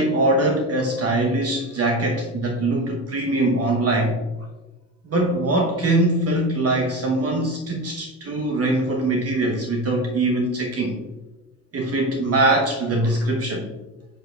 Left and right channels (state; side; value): normal; both; correlation 0.23